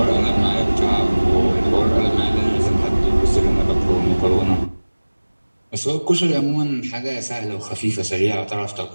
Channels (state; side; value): inverted; both; correlation -1.00